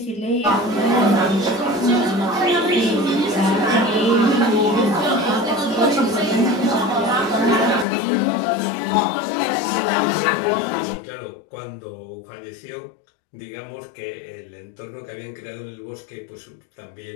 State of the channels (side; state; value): right; drops out; at 7.9 s